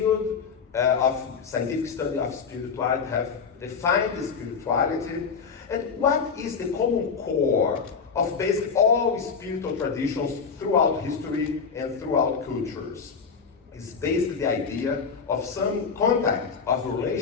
of scientific study of spirituality have defined the spirituality, and what is the common core of basically all spiritual traditions throughout history and throughout cultures. It's basically the idea of some contact of a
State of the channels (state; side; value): quieter; right; 5.8 dB